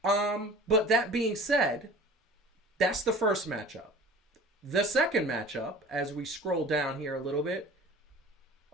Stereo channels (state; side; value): normal; both; correlation 0.43